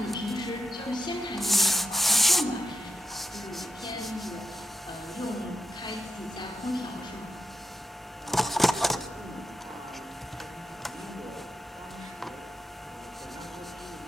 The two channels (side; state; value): both; normal; correlation 0.87